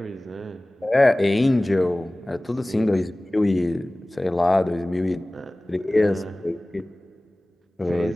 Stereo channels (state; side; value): normal; both; correlation 0.98